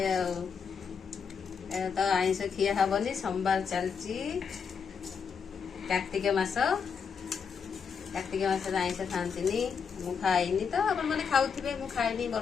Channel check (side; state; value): right; quieter; 6.3 dB